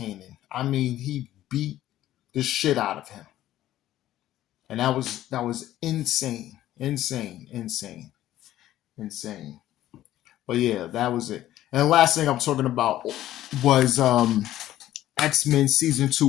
I mean, he beat the shit out of him. And that was insane. Insane. But yeah, that was it. And the last thing I'm talking about was X-Men Season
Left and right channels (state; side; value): quieter; right; 13.6 dB